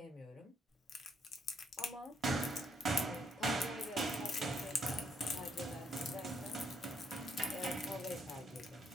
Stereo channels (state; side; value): normal; both; correlation 0.72